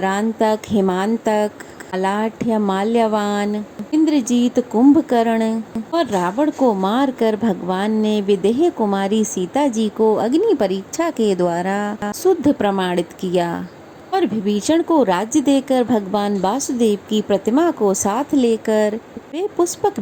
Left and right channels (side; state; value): both; identical; correlation 1.00